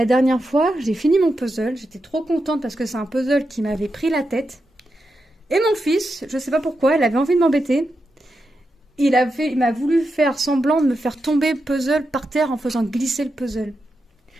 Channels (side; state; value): both; normal; correlation 0.87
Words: dernière fois, j'ai fini mon puzzle, j'étais trop contente parce que c'est un puzzle qui m'avait pris la tête. Et mon fils, je sais pas pourquoi, il avait envie de m'embêter. Il m'a voulu faire semblant de me faire tomber le puzzle par terre en faisant glisser le puzzle.